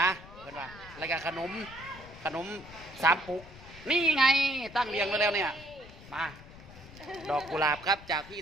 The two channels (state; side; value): noise; left; rumble, 18 dB below the sound